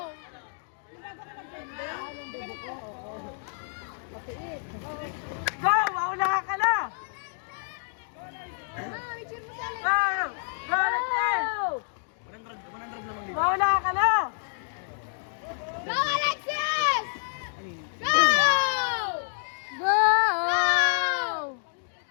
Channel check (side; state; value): right; silent; digital silence